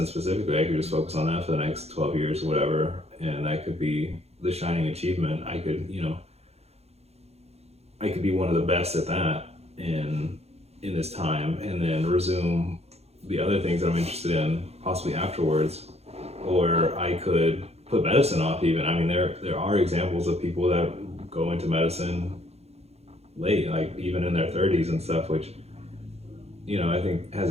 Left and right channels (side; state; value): left; late; 0.30 ms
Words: specifically, I could just focus on that for the next 12 years or whatever, and that could be the shining achievement. I could be one of the best at that in this time, and then resume the other things that I'm interested in possibly afterwards. Or I could put medicine off even. I mean, there are examples of people that go into medicine late, like even in their 30s and stuff, which, I think has